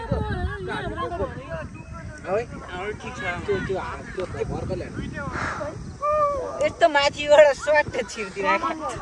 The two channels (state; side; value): identical; both; correlation 1.00